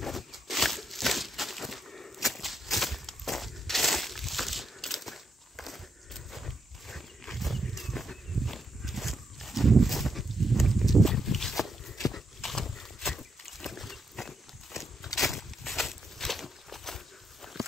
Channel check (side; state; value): both; normal; correlation 0.81